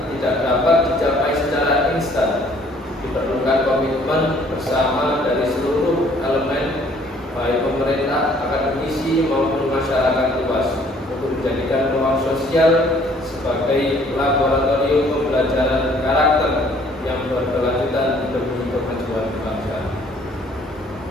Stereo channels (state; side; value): normal; both; correlation 0.59